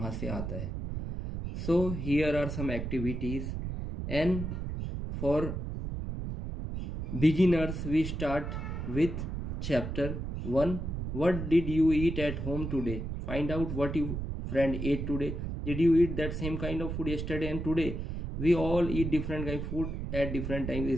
से आता है. So here are some activities, and for beginners we start with chapter 1. What did you eat at home today? Find out what your friend ate today. Did you eat that same kind of food yesterday and today? We all eat different kind of food at different times,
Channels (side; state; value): right; noise; rumble, 4 dB below the sound